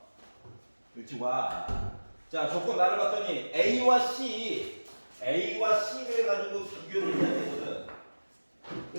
그렇지 와. 자 조건 나를 봤더니 A와 C를 가지고 비교를 해야 되거든.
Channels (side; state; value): both; inverted; correlation -1.00